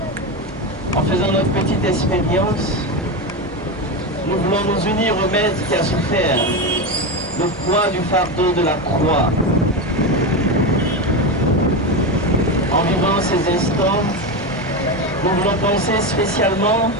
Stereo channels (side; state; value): both; normal; correlation 0.16